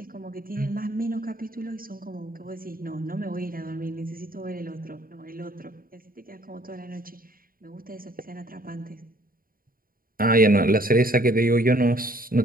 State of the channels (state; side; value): late; left; 0.42 ms